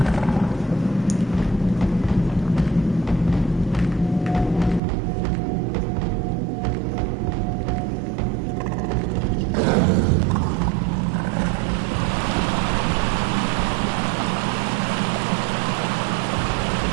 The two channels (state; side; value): drops out; left; at 4.8 s